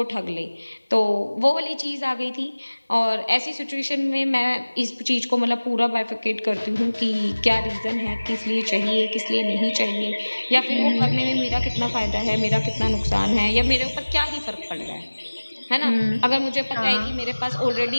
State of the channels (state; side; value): inverted; both; correlation -1.00